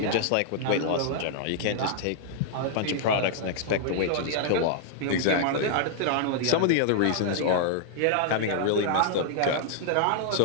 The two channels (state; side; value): different; both; correlation -0.01